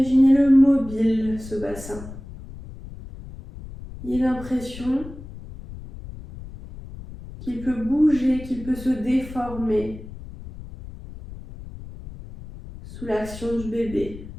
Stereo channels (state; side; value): noise; left; rumble, 14 dB below the sound